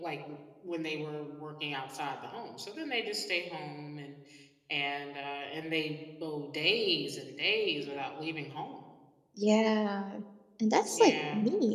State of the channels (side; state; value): both; identical; correlation 1.00